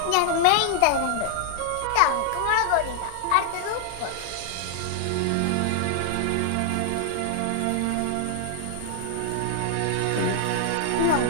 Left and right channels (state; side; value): different; both; correlation 0.00